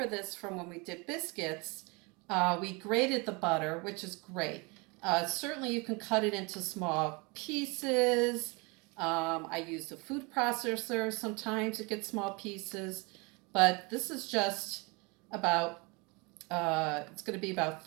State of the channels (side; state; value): left; quieter; 28.5 dB